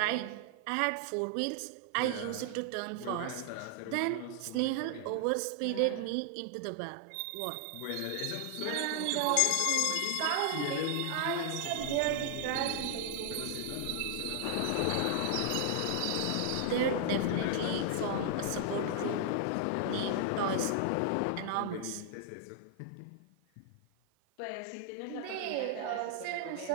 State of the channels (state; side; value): different; both; correlation -0.01